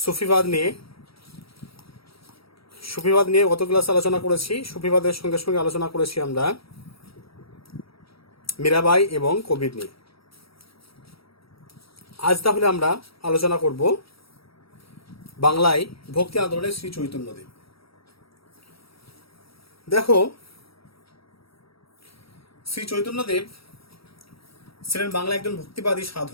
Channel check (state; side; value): late; right; 0.75 ms